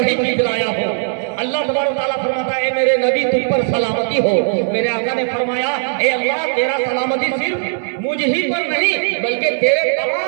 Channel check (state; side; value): silent; left; digital silence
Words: چیز لایا ہوں۔ اللہ تبارک تعالیٰ فرماتا ہے، اے میرے نبی تم پر سلامتی ہو۔ میرے آقا نے فرمایا، اے اللہ، تیرا سلامتی صرف مجھ ہی پر نہیں بلکہ تیرے